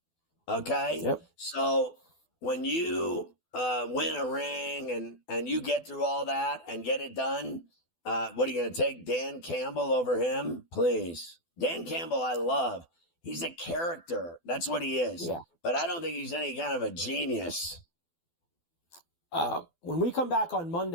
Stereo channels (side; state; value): right; late; 12 ms